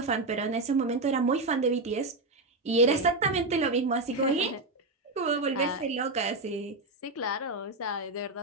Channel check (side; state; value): left; quieter; 3.1 dB